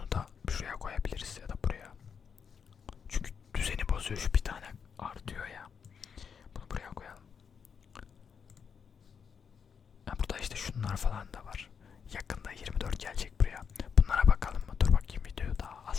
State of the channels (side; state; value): right; quieter; 6.7 dB